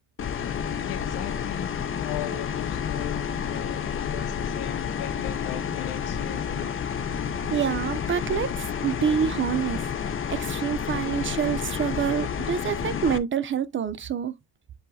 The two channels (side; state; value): both; normal; correlation 0.28